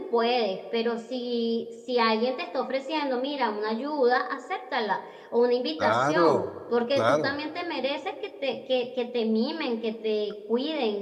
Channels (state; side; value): identical; both; correlation 1.00